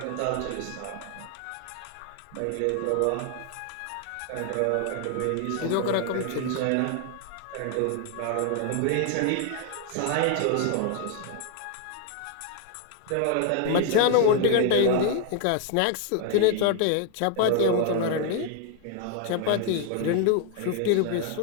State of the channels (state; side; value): different; both; correlation 0.00